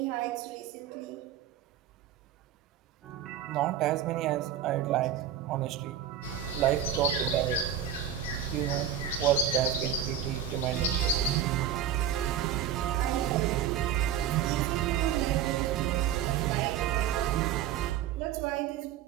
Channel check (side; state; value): left; quieter; 9.4 dB